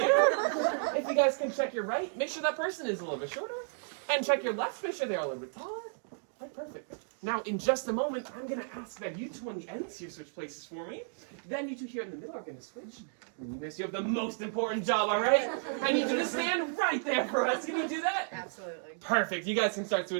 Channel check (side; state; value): left; silent; digital silence